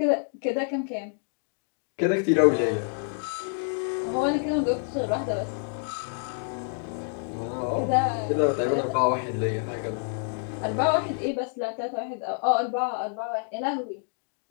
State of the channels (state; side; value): silent; right; 60 dB below the other